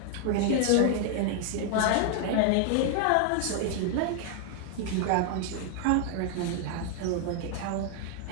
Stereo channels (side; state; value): both; different; correlation 0.00